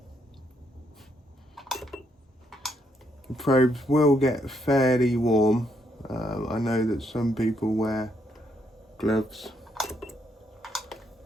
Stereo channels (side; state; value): both; normal; correlation 0.75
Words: The probes will get fairly warm. I know that some people wear gloves.